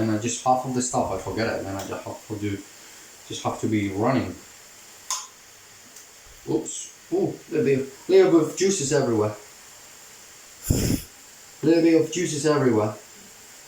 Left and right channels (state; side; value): identical; both; correlation 1.00